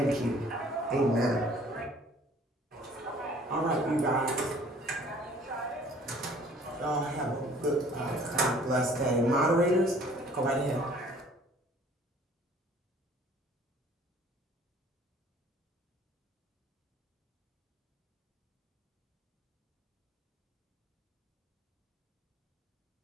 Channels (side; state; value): both; normal; correlation 0.54